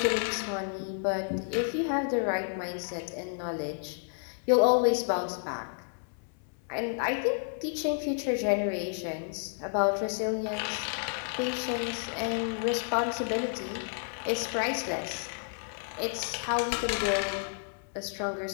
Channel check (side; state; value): right; silent; 57 dB below the other